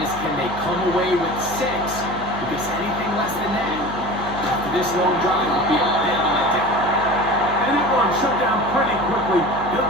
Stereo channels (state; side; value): noise; left; hum, 14 dB below the sound